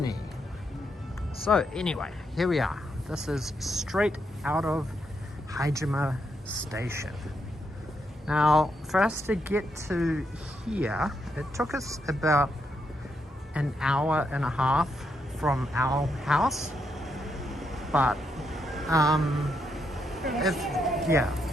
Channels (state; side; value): normal; both; correlation 0.80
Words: So anyway, here we are. This is straight out of Haijima station. Now, for us to get to here, it took us about an hour and a half from our house, but